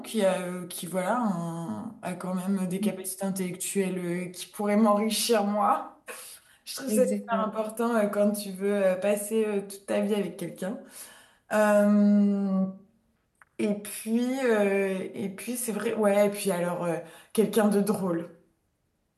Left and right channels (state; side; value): identical; both; correlation 1.00